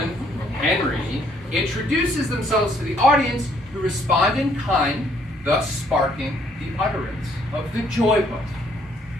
Henry introduces themselves to the audience, who respond in kind, thus sparking the utterance of the joy buzzer.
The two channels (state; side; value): normal; both; correlation 0.66